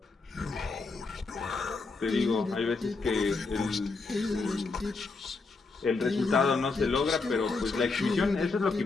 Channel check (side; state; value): right; quieter; 4.0 dB